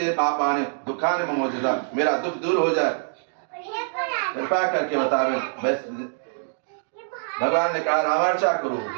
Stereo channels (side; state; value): left; silent; digital silence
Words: पापानि दुखानि ममोचता, मेरा दुख दूर हो जाए, कृपा करके बतावे। भगवान ने कहा रामार्चा करो,